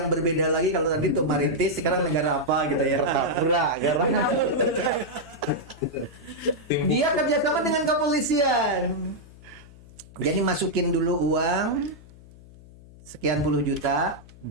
berbeda lagi. Kalau tadi tuh Maritis, sekarang negara apa gitu ya. Dia kerjasama dengan kepolisian, jadi masukin dulu uang sekian puluh juta,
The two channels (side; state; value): left; noise; hum, 21 dB below the sound